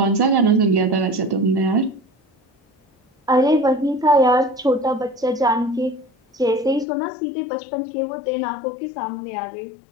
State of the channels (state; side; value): drops out; right; at 6.9 s